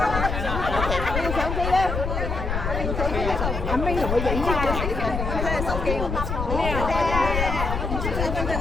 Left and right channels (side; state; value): left; noise; rumble, 2 dB below the sound